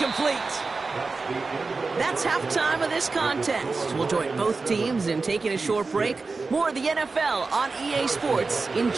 That's halftime of this contest. We'll join both teams in taking a short break. More of the NFL on EA Sports in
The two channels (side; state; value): left; quieter; 4.0 dB